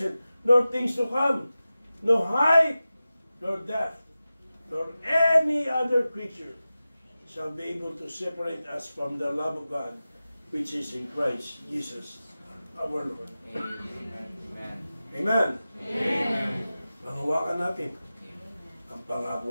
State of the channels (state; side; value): inverted; both; correlation -0.95